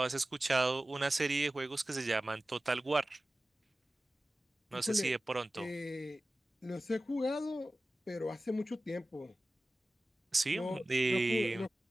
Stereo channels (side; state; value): both; normal; correlation 0.96